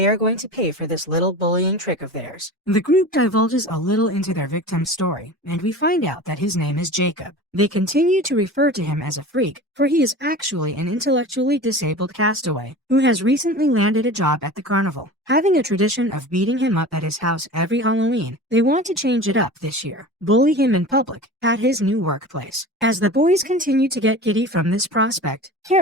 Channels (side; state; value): both; normal; correlation 0.35